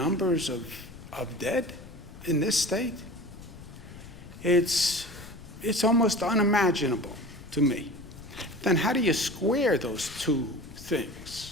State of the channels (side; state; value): left; noise; rumble, 16 dB below the sound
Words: of dead in this state, it's almost unimaginable to me. Then how do you square those two